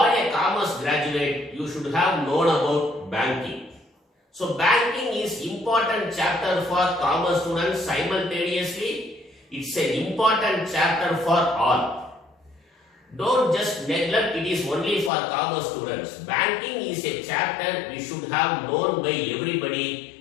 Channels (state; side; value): drops out; right; at 15.1 s